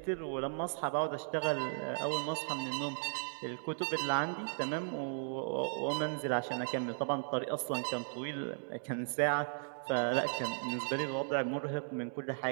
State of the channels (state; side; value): silent; left; digital silence